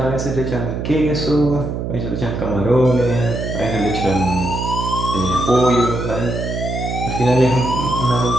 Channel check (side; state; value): right; noise; hum, 4 dB below the sound